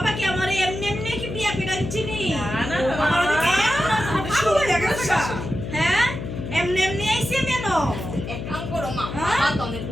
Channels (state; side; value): noise; left; hum, 7 dB below the sound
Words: কি আমার এমনি এমনি কি বিয়া করে আনছিনি? না, আমার ওদিকে ভালো হয়ে গেছে গা। হ্যাঁ, এমনি এমনি আইছি আমি এনো। এক কাম করো মা হ্যাঁ? বাবা তো অনেক